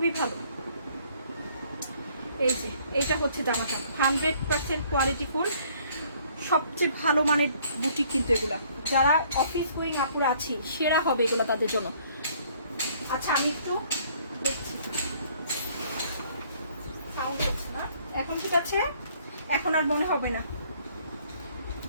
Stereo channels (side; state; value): both; inverted; correlation -0.61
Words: ভালো। এই যে এইটা হচ্ছে জামাটা 100% কোয়ালিটি ফুল, সবচেয়ে ভালো মানের বুটিক কিন্তু এগুলা, যারা অফিস গোয়িং আপুরা আছি সেরা হবে এগুলো তাদের জন্য। আচ্ছা আমি একটু দেখছি, সাউন্ড হচ্ছে না এখন, ঠিক আছে এখন আর মনে হবে না।